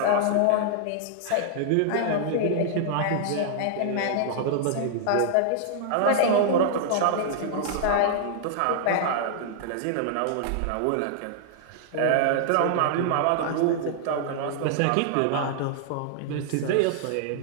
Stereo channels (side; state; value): both; different; correlation -0.01